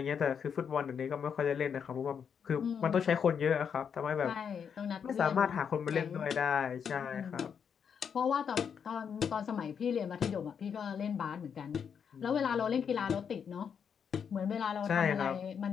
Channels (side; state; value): right; quieter; 7.2 dB